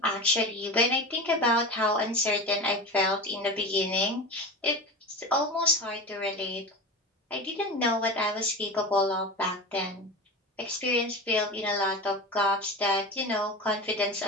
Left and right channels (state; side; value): normal; both; correlation 0.28